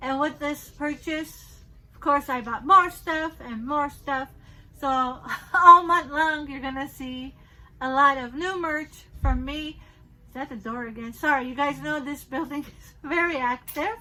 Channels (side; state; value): both; identical; correlation 1.00